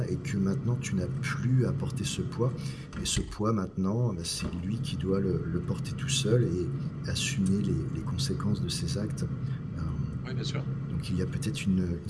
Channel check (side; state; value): both; identical; correlation 1.00